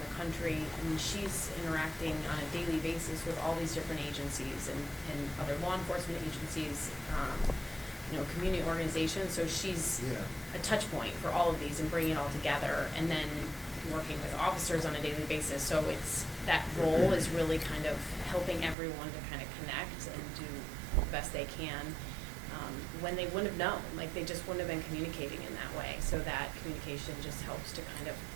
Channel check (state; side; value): drops out; left; at 18.8 s